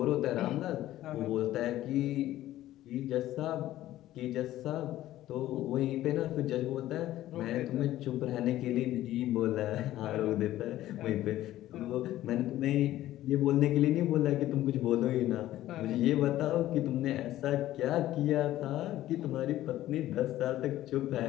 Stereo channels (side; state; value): right; quieter; 14.3 dB